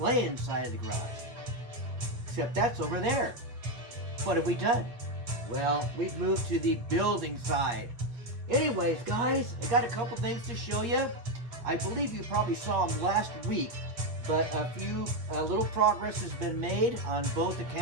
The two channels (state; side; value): late; left; 8.3 ms